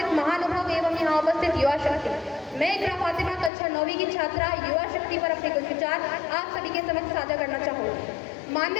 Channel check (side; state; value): right; drops out; at 3.5 s